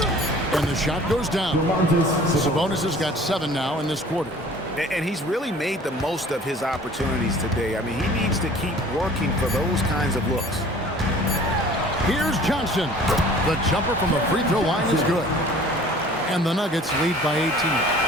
And the shot goes down. Sabonis has got 7 now in this quarter. And he's really made the most of his opportunities today. I mean, he needs to keep working for those kinds of looks. Here's Johnson. The jumper from the free throw line is good. And the Nuggets lead by 18.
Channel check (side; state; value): both; normal; correlation 0.48